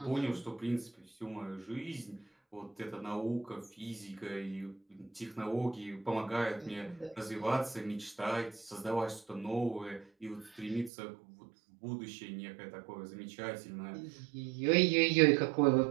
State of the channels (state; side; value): drops out; left; at 10.9 s